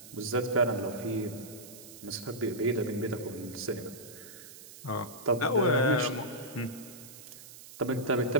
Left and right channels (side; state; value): right; noise; hiss, 16 dB below the sound